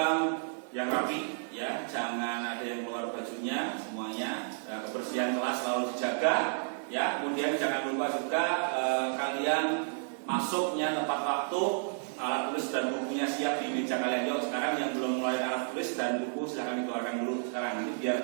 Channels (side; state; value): left; silent; digital silence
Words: yang rapi ya, jangan ada yang keluar bajunya, semuanya kebersihan kelas selalu dijaga. Ya, kemudian jangan lupa juga kalian masuknya tepat waktu, alat tulis dan bukunya siap di meja kalian. Yuk, sekarang yang belum mulai alat tulis dan buku silahkan dikeluarkan dulu sekarang, nanti biar